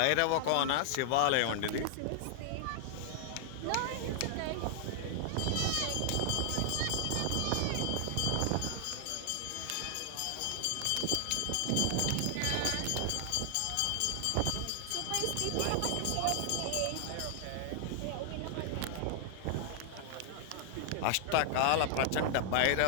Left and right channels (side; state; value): both; different; correlation -0.01